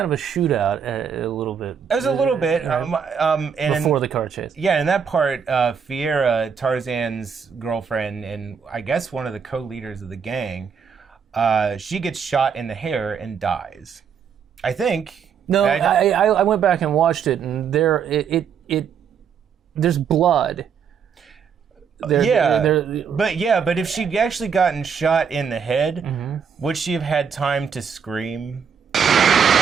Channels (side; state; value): left; quieter; 6.9 dB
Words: of a shootout a little bit. It was a little bit, Right. and Before the car chase. yeah, in that part, Fiera, Tarzan's girlfriend, and I guess one of the co-leaders of the gang, she gets shot in the hair and dies. I think. No, I went back and watched it, and there's blood. But if she'd actually gotten shot in the head, Mm-hmm. would she have had time to scream?